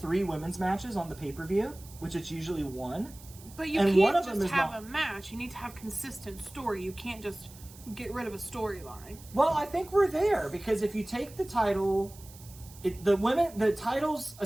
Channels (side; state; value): right; noise; hiss, 20 dB below the sound